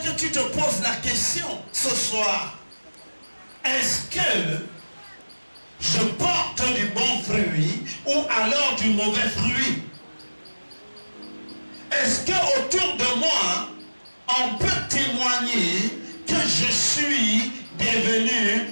tu te poses la question ce soir. Est-ce que je porte du bon fruit ou alors du mauvais fruit? Est-ce que autour de moi, on peut témoigner que je suis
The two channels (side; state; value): both; inverted; correlation -1.00